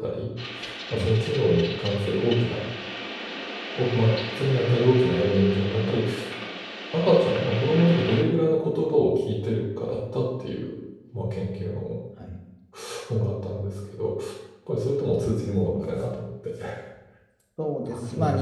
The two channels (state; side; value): identical; both; correlation 1.00